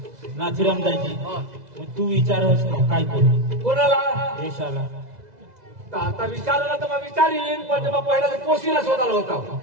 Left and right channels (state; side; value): late; left; 2.0 ms